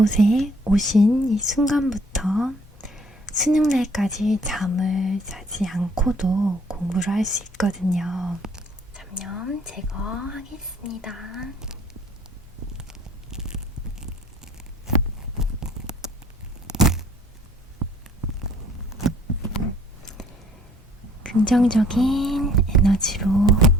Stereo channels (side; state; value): both; normal; correlation 0.59